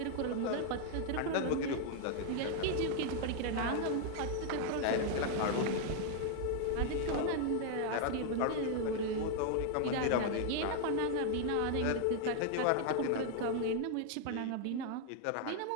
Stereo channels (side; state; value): both; different; correlation 0.00